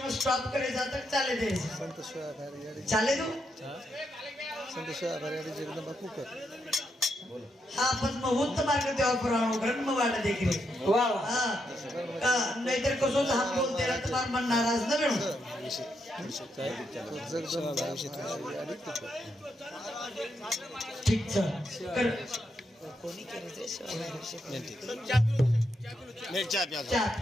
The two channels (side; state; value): both; normal; correlation 0.81